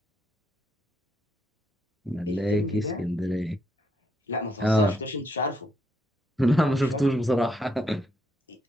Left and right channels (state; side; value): normal; both; correlation 0.76